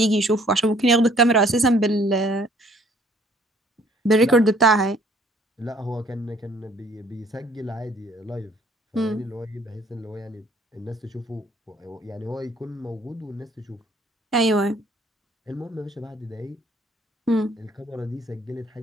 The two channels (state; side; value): normal; both; correlation 0.59